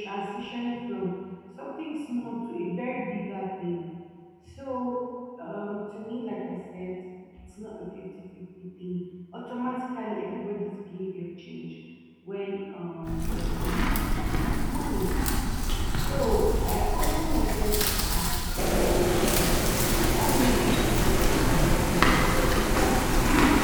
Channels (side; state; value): both; identical; correlation 1.00